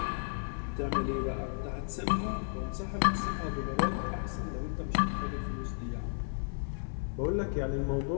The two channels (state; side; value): silent; right; digital silence